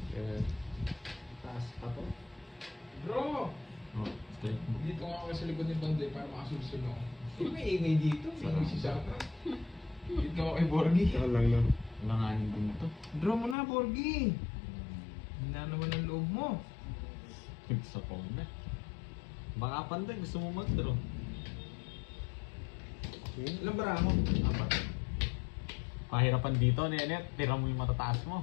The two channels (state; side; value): drops out; right; at 13.6 s